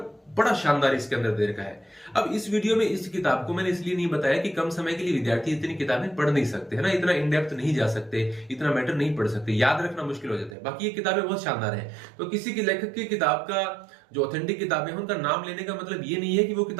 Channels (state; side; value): drops out; left; at 10.6 s